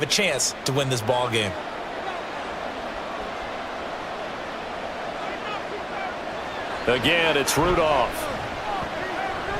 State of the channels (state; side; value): identical; both; correlation 1.00